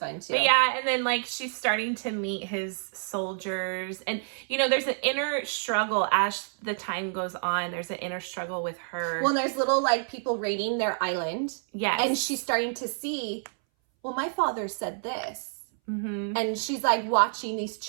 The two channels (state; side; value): silent; left; 59 dB below the other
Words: too. But yeah, and then, like, she's starting to meet his soldiers, and there's an inner struggle as the time goes on. There's an inner struggle with her. Well, there's little, like, people raiding their island. Yes. And she's starting to see, well, my father said this. Mm-hmm. And she's, like, watching these